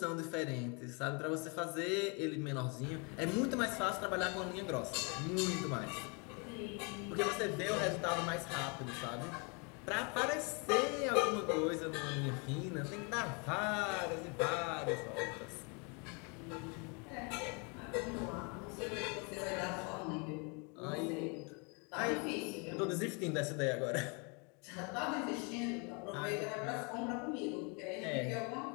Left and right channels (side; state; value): right; quieter; 33.4 dB